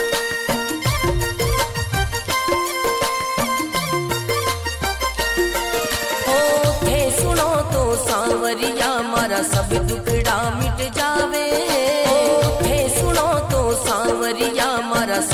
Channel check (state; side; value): identical; both; correlation 1.00